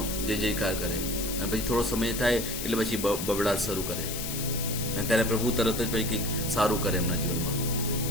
જય જયકાર કરે, અને પછી થોડો સમય થાય એટલે પછી બબડાટ શરૂ કરે, અને ત્યારે પ્રભુ તરત જ પછી કંઈક સારું કરે એમના જીવનમાં.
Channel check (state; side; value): noise; left; hiss, 5 dB below the sound